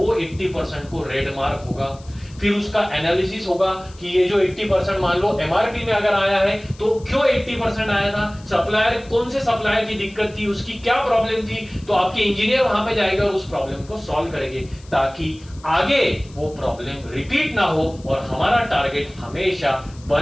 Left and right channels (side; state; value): left; noise; hiss, 25 dB below the sound